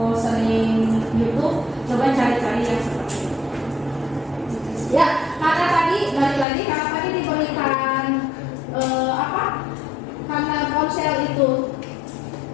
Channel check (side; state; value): right; drops out; at 6.5 s